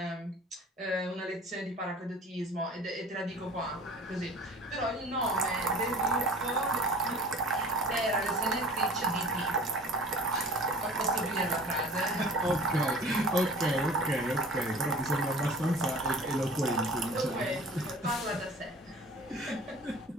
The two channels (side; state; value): both; normal; correlation 0.44